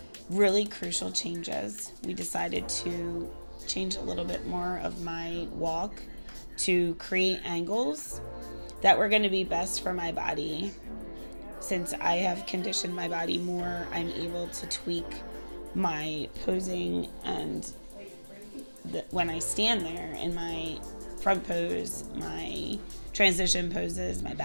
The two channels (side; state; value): both; inverted; correlation -1.00